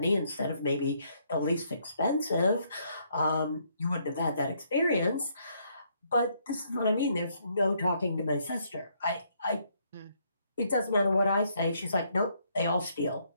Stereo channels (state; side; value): inverted; both; correlation -0.71